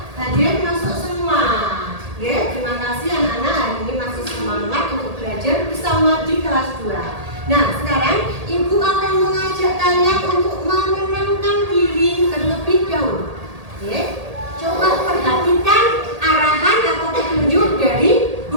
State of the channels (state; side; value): late; left; 1.8 ms